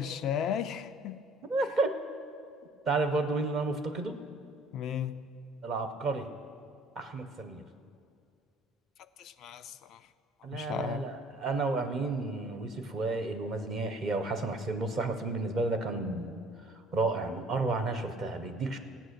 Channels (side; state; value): both; normal; correlation 0.54